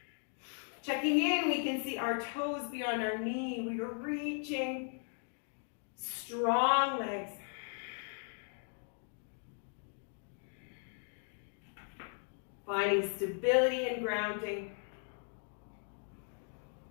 Checking in, we can see our toes beyond our knee. We are reaching. Strong legs. Finding stability and grounding.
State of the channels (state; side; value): silent; right; 53 dB below the other